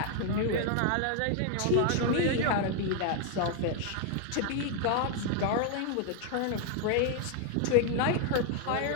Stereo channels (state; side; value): different; both; correlation 0.01